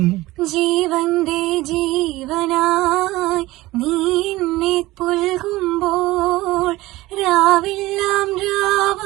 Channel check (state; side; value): quieter; left; 18.6 dB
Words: ജീവന്റെ ജീവനായി നീ എന്നെ പുൽകുമ്പോൾ രാവെല്ലാം